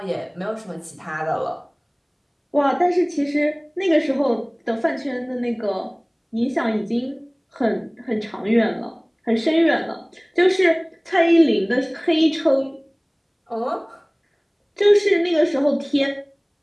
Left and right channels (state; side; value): identical; both; correlation 1.00